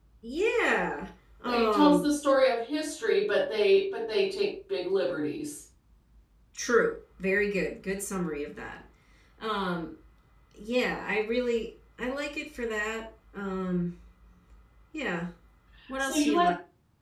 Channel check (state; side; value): identical; both; correlation 1.00